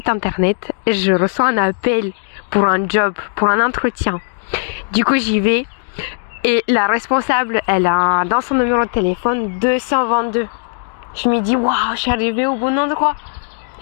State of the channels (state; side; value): silent; right; digital silence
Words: internet, je reçois un appel pour un job, pour un entretien. Du coup, j'y vais et la responsable, elle a dans son numéro de téléphone 222. Je me dis, waouh, je suis arrivée au bon endroit.